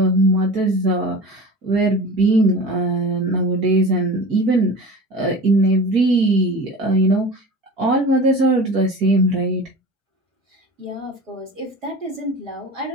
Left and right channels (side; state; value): both; normal; correlation 0.35